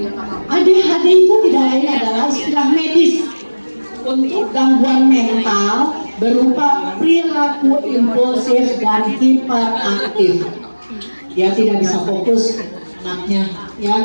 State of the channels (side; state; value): both; inverted; correlation -1.00